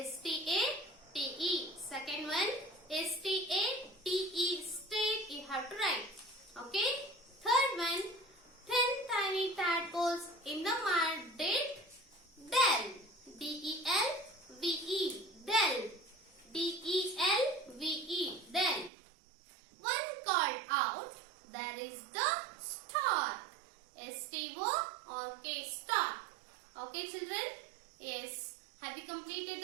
Second one, S-T-A-T-E, state, you have to write. Okay. Third one, 10 tiny tadpoles in the mud did del. D-E-L-V-E, del. D-E-L-V-E, del. One called out, there is the star. S-T-O-R-K, star. Okay, children? Yes. Have you completed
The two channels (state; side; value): drops out; left; at 18.9 s